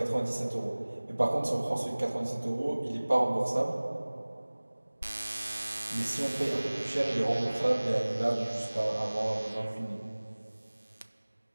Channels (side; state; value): both; inverted; correlation -1.00